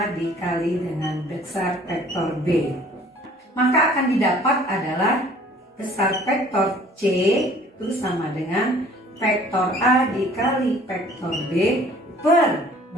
dikali dengan besar vektor B. Maka akan didapat adalah besar vektor C itu sama dengan vektor A dikali vektor B per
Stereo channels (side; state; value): both; normal; correlation 0.53